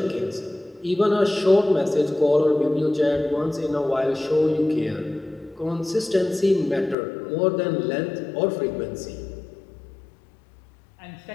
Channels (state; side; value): drops out; right; at 7.0 s